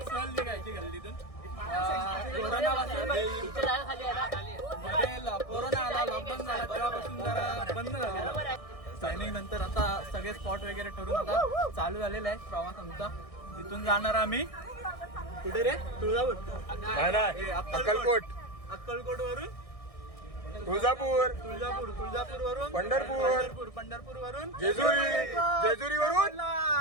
सहल निघायची गल्लीतून. कोरोना आला, लॉकडाऊन झाला, तेव्हापासून जरा बंद झालेलं. प्लॅनिंग नंतर आता सगळे स्पॉट वगैरे ठरून आता चालू झालेला आहे प्रवास आमचा. तिथून जाणार आम्ही कुठे रे? तुळजापूर, अक्कलकोट, अक्कलकोट वरून तुळजापूर वरून पंढरपूर वरून जेजुरी वरून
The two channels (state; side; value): late; right; 1.6 ms